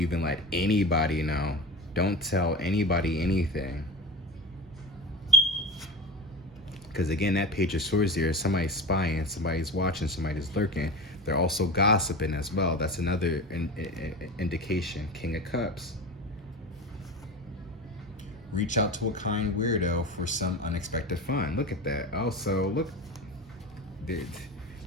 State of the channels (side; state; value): both; normal; correlation 0.30